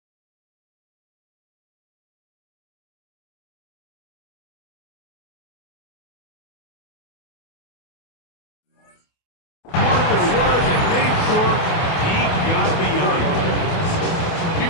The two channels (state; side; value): late; right; 28 ms